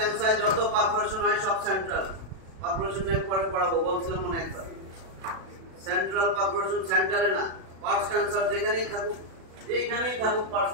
যত পারফোরেশন হয় সব সেন্ট্রাল পারফোরেশন নিয়ে পরে পড়াবো, বলছিলাম মনে একবার। সেন্ট্রাল পারফোরেশন সেন্টারে না, পার্স টেন্সার যেখানেই থাকুক পার্স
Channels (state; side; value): late; left; 37 ms